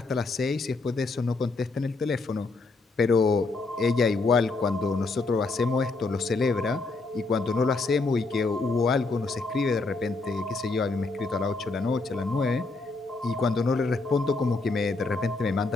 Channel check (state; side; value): quieter; right; 3.7 dB